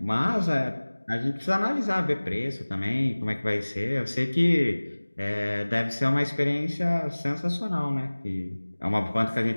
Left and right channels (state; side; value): inverted; both; correlation -1.00